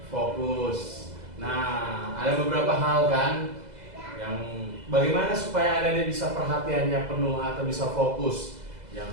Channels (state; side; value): late; left; 2.0 ms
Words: fokus. Nah, ada beberapa hal kan yang bagaimana supaya adik-adik bisa perhatiannya penuh atau bisa fokus.